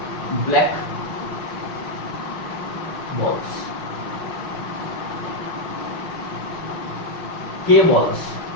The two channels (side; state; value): right; late; 5.5 ms